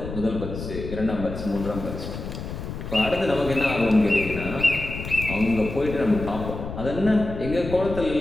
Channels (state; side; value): noise; left; rumble, 8 dB below the sound